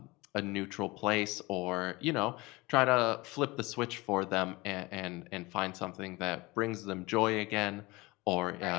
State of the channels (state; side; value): quieter; right; 22.7 dB